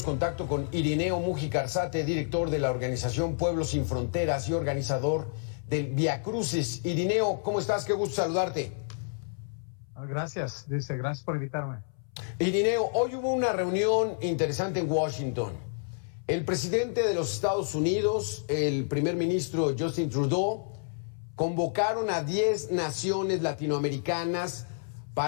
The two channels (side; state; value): right; silent; 58 dB below the other